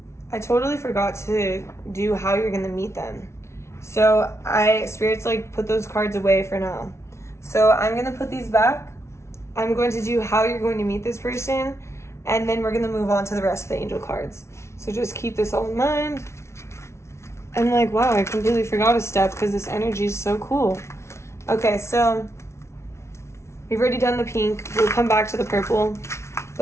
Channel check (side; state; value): right; late; 0.13 ms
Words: I totally forgot to do how you're gonna meet them. So Spirit's like, put those cards away for now. So I'm gonna put these back. I'm going to do how you're going to meet this person, and then we're gonna move on to the rest of the angel cards. So just keep this all in mind. I'm like, wow, I completely forgot a step because this energy is so cool. Okay, so we've already done the pink. We'll come back to the purple.